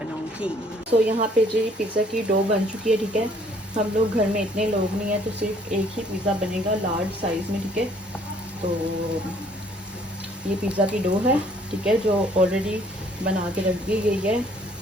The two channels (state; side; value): normal; both; correlation 0.61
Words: तो यहाँ पे जी पिज़्ज़ा की डो बन चुकी है, ठीक है। हम लोग घर में इतने लोग नहीं है, तो सिर्फ एक ही पिज़्ज़ा बनेगा लार्ज साइज़ में, ठीक है। तो ये पिज़्ज़ा की डो है, ठीक है, जो ऑलरेडी बना के रख दी गई है।